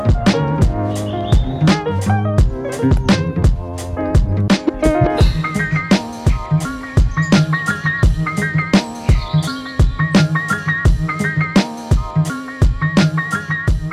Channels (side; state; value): both; identical; correlation 1.00